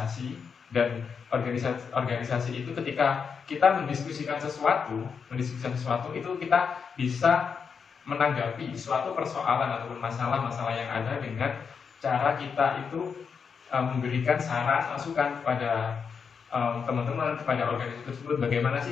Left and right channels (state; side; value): quieter; right; 6.1 dB